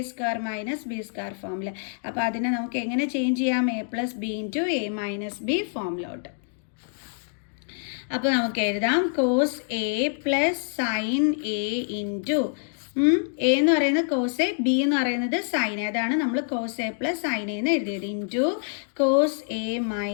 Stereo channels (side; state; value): right; silent; 61 dB below the other